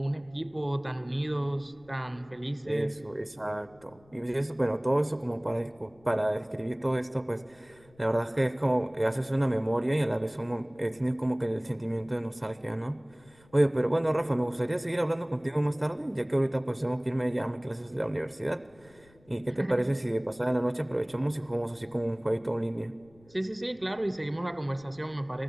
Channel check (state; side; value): noise; left; rumble, 28 dB below the sound